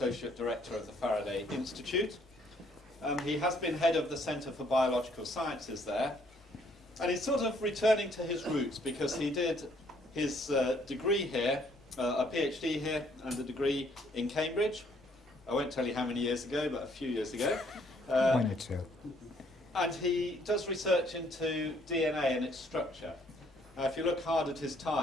Director of the Faraday Institute. He has been head of the Centre for Biological Sciences there, and he's sort of returning to his roots because he did his degree here, a PhD here, and a degree in Cambridge. I won't tell you how many years ago, but a few years ago. 1 or 2. And he does research into DNA and its structure. If you look hard at his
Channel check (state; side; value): normal; both; correlation 0.65